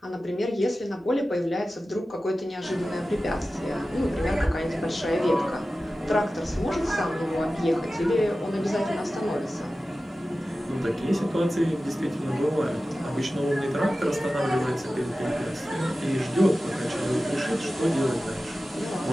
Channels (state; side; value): normal; both; correlation 0.95